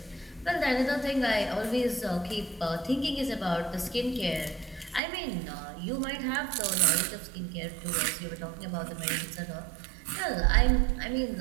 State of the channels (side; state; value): left; drops out; at 5.0 s